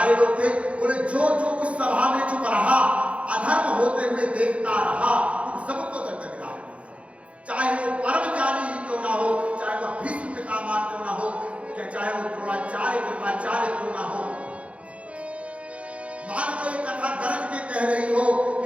लोग थे, बोले जो जो उस सभा में चुप रहा, अधर्म होते हुए देखता रहा, उन सबको दंड मिला, चाहे वो परम ज्ञानी ही क्यों ना हो, चाहे वो भीष्म पितामह क्यों ना हो, चाहे वो द्रोणाचार्य कृपाचार्य क्यों ना हो। मान लो ये कथा गरज के कह रही हो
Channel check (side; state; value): left; late; 0.062 ms